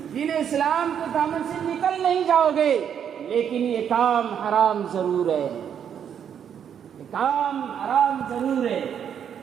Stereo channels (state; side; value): quieter; left; 8.5 dB